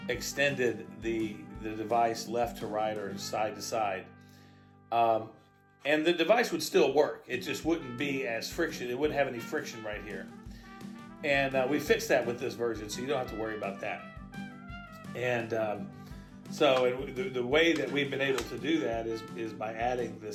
extended the device left to right or side to side. And the device would still work. It just wouldn't be as friction. It wouldn't have any friction right here. And we fixed that with this version, so you don't have to worry about that. And so the way that we've been able to do that is by adding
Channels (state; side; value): identical; both; correlation 1.00